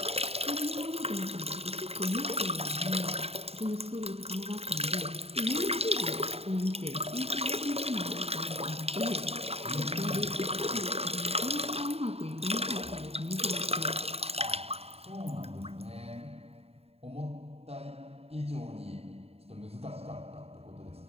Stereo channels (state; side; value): late; left; 0.29 ms